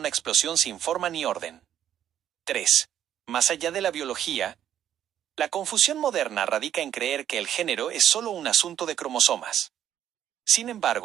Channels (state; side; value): quieter; left; 10.5 dB